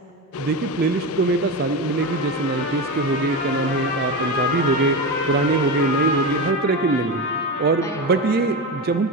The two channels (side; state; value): both; normal; correlation 0.19